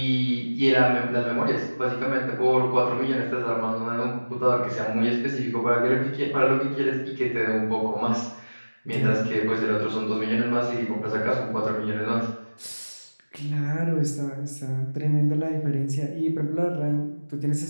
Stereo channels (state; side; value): inverted; both; correlation -1.00